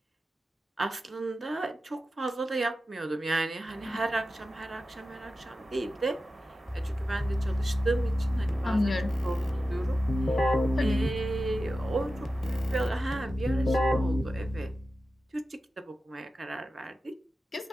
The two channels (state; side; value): normal; both; correlation 0.93